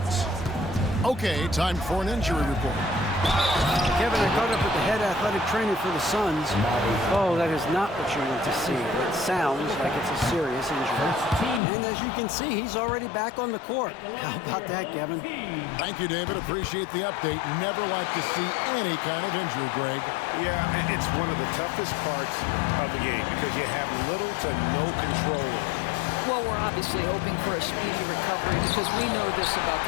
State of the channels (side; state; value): right; drops out; at 11.6 s